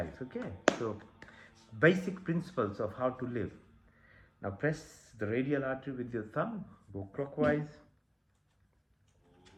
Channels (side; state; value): both; identical; correlation 1.00